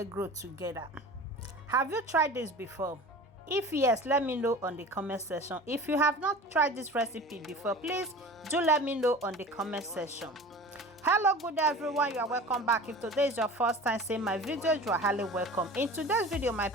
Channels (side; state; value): both; normal; correlation 0.38